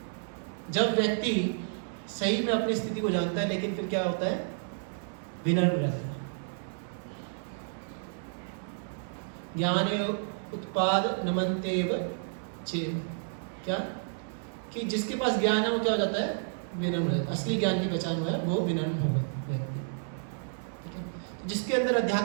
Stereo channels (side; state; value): left; silent; digital silence